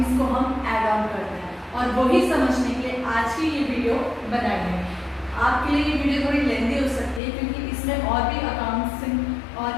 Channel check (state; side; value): drops out; right; at 7.2 s